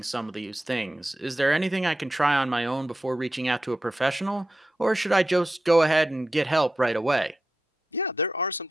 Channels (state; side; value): normal; both; correlation 0.89